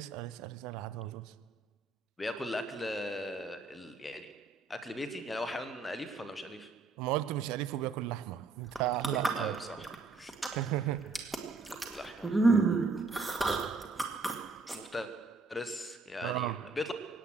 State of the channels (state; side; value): quieter; left; 3.9 dB